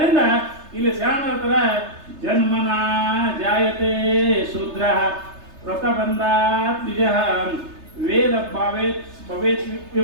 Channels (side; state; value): left; late; 3.3 ms